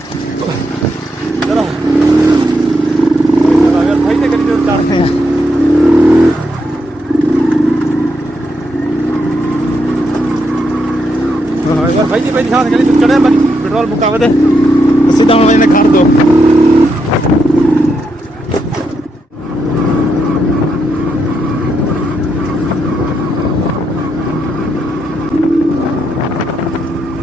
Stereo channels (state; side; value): normal; both; correlation 0.81